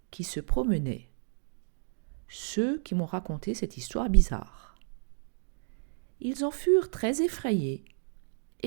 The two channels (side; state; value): left; silent; digital silence